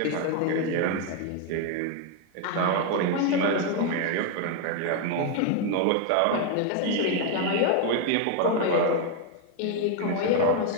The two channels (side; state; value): both; different; correlation 0.01